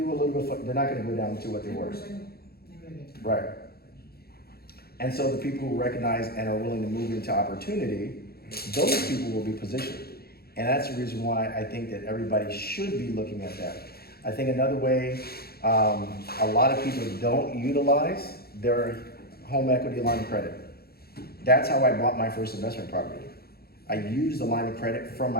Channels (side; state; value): right; late; 0.45 ms